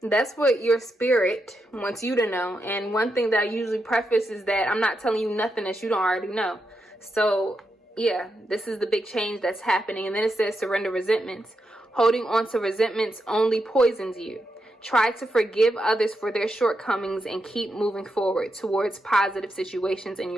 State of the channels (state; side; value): normal; both; correlation 0.85